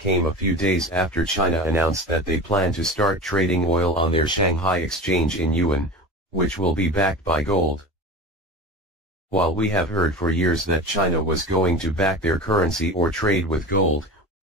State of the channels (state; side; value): normal; both; correlation 0.30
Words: a few days after China announced that they plan to start trading oil on their Shanghai exchange in yuan, which will be backed by gold. While we have heard for years that China was going to back their currency or trade with gold,